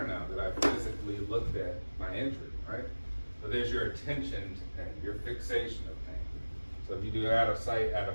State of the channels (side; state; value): both; inverted; correlation -1.00